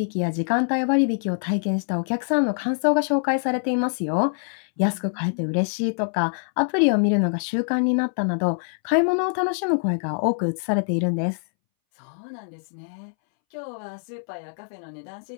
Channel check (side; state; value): right; silent; 62 dB below the other